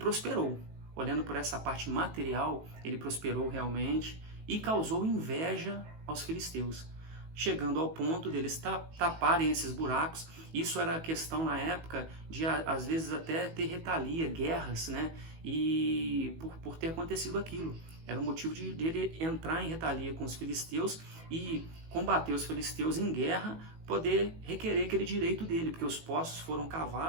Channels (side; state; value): left; late; 18 ms